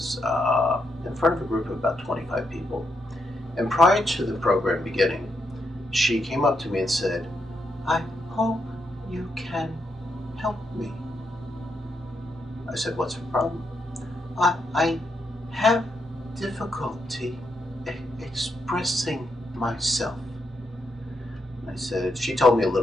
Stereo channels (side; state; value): both; normal; correlation 0.80